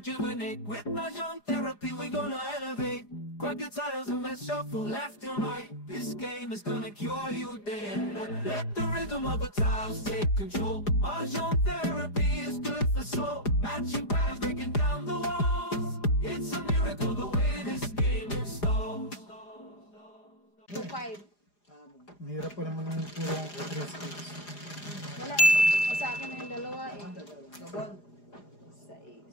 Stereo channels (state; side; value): late; right; 4.9 ms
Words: With Mahjong therapy, we're gonna elevate. Grab your titles and let's shuffle left and right. This game is gonna cure you day and night. Let the rhythm of the tiles take control. Mahjong therapy is good for soul. Matching patterns, breaking down the walls. It's a miracle the way this game installs. 2-5. Mahirap pa naman ng puro 3 sticks. Wala. O sa akin na yung dalawa eh. Gabon. 6.